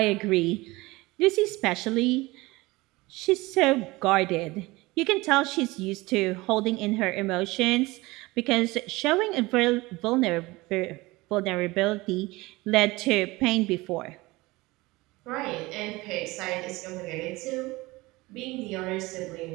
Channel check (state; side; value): quieter; left; 21.4 dB